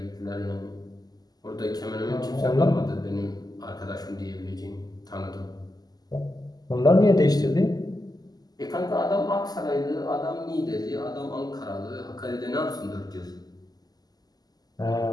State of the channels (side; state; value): right; late; 0.19 ms